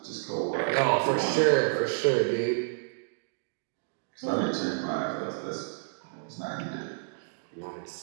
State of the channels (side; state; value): left; silent; digital silence